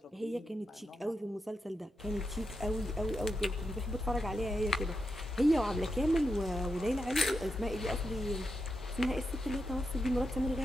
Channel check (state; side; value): normal; both; correlation 0.86